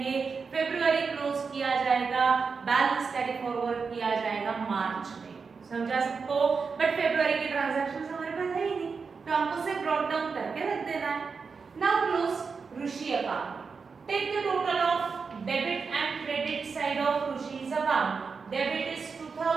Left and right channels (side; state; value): left; quieter; 5.2 dB